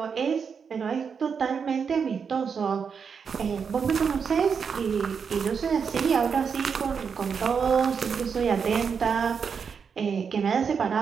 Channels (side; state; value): left; quieter; 6.3 dB